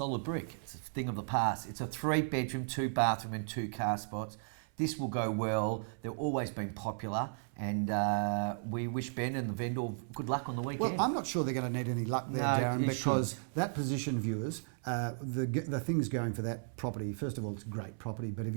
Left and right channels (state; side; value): silent; left; 54 dB below the other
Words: brick. It's a thing of the past. It's a 3-bedroom, 2-bathroom and 2 car spots. This will go well. They've always been popular, and we wish Ben and the vendor good luck on the weekend. Well, I'm not sure they're going to need any luck there, Darren, because that position, viewers, the things going for that property, first of all, it's a great property, but if